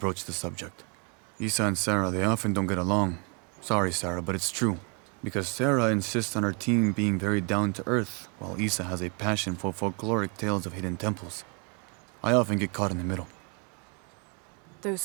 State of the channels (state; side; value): quieter; left; 34.8 dB